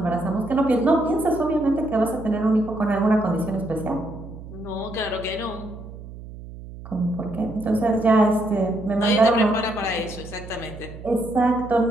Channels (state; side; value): noise; right; hum, 14 dB below the sound